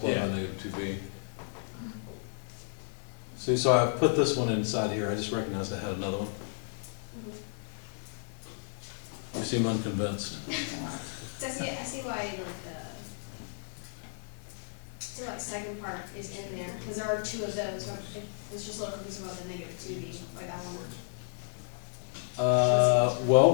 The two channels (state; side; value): silent; right; 56 dB below the other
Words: by Yeah. negative 2b. See, so I put this one inside here, I just recognized I had another one. You seem unconvinced. So I see why like the second part is in there, because there are 2 of those, but it's just a little confusing about the negative 2b, like that one. Well,